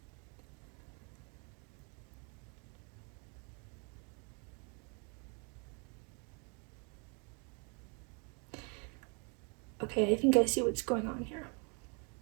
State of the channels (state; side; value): quieter; left; 35.6 dB